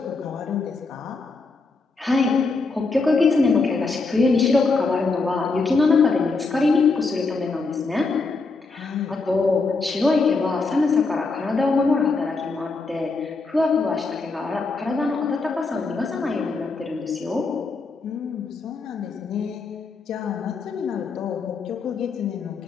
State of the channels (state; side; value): quieter; right; 4.0 dB